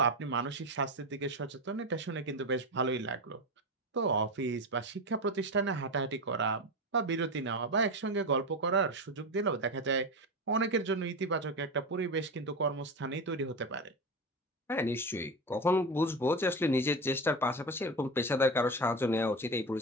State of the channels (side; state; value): both; normal; correlation 0.20